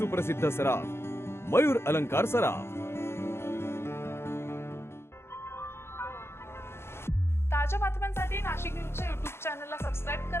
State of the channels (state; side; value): late; right; 0.12 ms